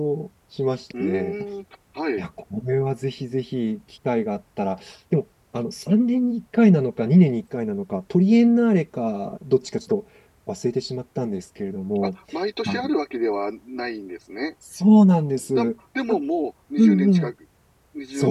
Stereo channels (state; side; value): identical; both; correlation 1.00